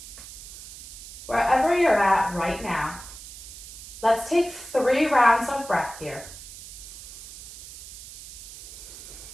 Wherever you're at right now, let's take 3 rounds of breath here.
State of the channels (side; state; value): right; noise; hiss, 14 dB below the sound